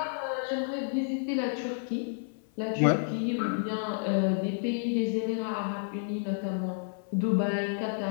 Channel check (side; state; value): right; silent; 58 dB below the other